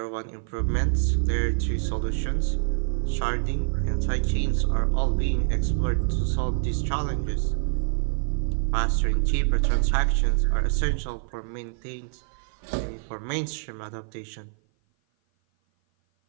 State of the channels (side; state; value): left; silent; 56 dB below the other